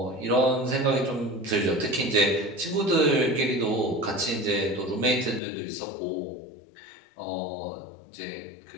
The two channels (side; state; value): right; drops out; at 5.4 s